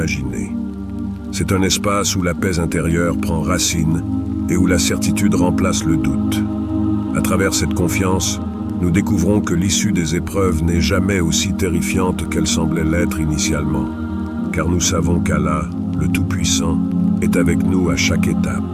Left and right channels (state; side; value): identical; both; correlation 1.00